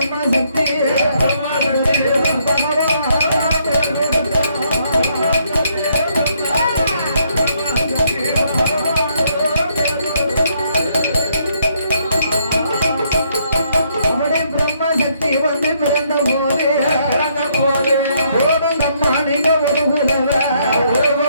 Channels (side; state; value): both; inverted; correlation -0.71